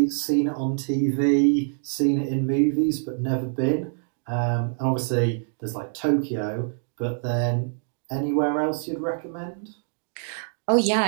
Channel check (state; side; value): silent; left; digital silence